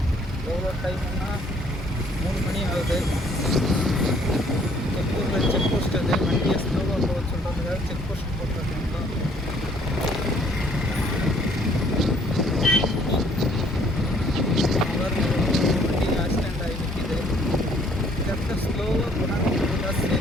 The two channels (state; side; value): normal; both; correlation 0.61